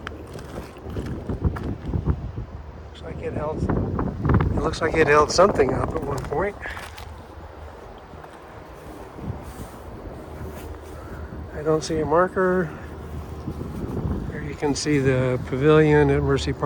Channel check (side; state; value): both; identical; correlation 1.00